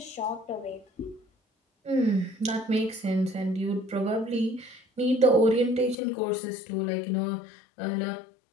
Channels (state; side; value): drops out; right; at 6.0 s